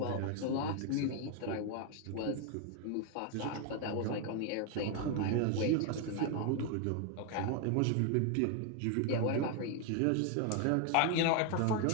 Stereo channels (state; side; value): different; both; correlation 0.01